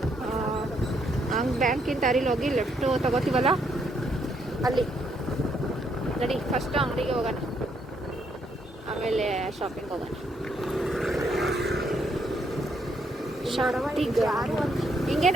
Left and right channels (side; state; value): both; normal; correlation 0.73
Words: ಹಂಗೆ ಬ್ಯಾಂಕಿನ ದಾರಿಲಿ ಹೋಗಿ ಲೆಫ್ಟು ತಗೋತೀವಲ್ಲ ಅಲ್ಲಿ ನಡಿ. ಫಸ್ಟು ಅಂಗಡಿಗೆ ಹೋಗೋಣ, ಆಮೇಲೆ ಶಾಪಿಂಗ್ ಹೋಗೋಣ. ಹಿಂಗೆ